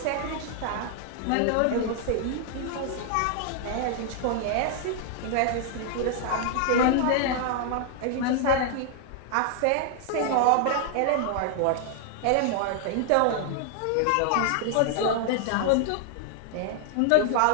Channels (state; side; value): different; both; correlation 0.00